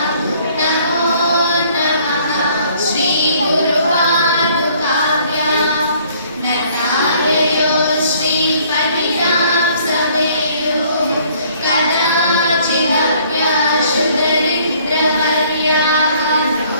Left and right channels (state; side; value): inverted; both; correlation -0.60